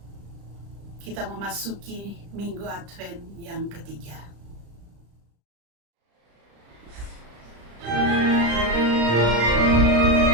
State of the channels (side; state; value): left; late; 35 ms